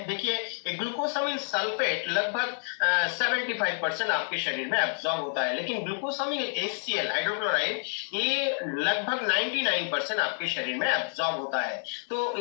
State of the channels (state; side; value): silent; right; digital silence